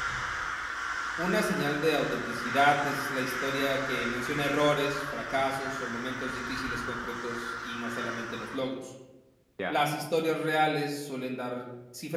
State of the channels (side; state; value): both; identical; correlation 1.00